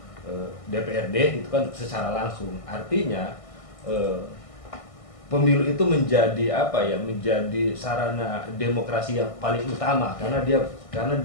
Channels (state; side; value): late; right; 1.6 ms